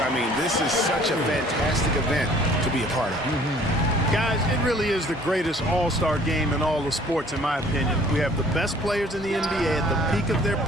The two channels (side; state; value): both; normal; correlation 0.55